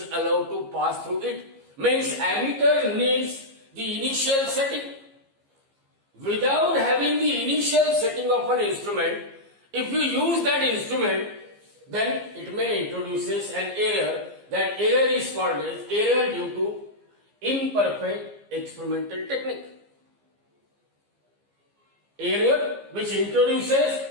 allowed to pass through it. Means ammeter needs the initial setting. Without having the initial setting of an instrument, if you use that instrument, then it may introduces an error. That error is called as error due to imperfect experimental technique. Error which introduces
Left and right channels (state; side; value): late; left; 15 ms